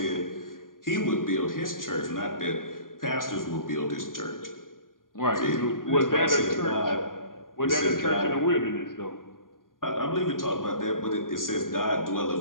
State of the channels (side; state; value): right; late; 0.90 ms